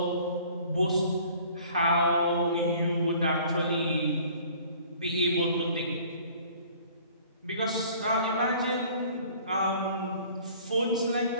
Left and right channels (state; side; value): inverted; both; correlation -0.52